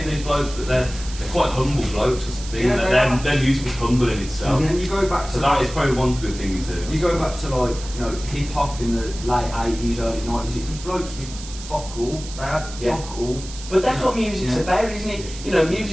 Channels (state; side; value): noise; right; hiss, 14 dB below the sound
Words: these blokes, but they're quite humble blokes or something. Yeah, they are. Their music is humble in itself. And you go back to So that is probably one good thing he's doing. You go back to like, you know, hip hop in the late 80s, early 90s, it was blokes with fuck all, they had fuck all. But that's what music's about, isn't it? You know,